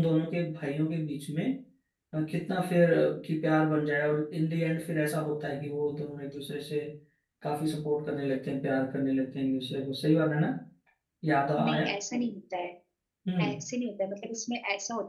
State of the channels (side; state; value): both; identical; correlation 1.00